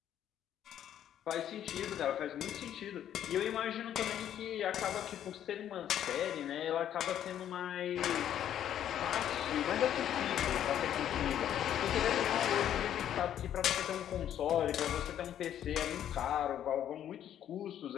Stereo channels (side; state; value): right; quieter; 10.5 dB